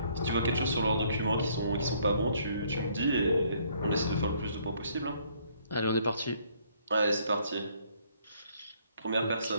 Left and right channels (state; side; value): inverted; both; correlation -0.65